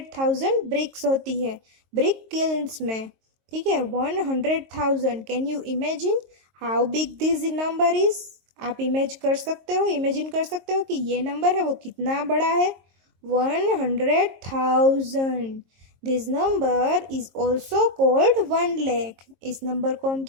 bricks होती है ब्रिक किल्न्स में। ठीक है, 100,000। Can you imagine how big this number is? आप इमेजिन कर सकते हो कि ये नंबर है वो कितना बड़ा है? 100,000। This number is also called 1 lakh. इस नंबर को हम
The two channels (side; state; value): left; late; 22 ms